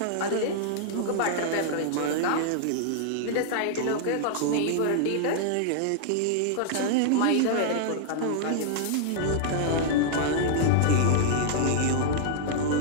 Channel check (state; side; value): different; both; correlation -0.01